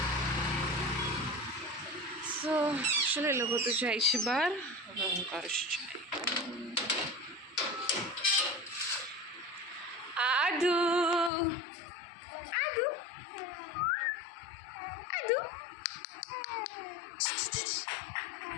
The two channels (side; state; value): right; drops out; at 11.3 s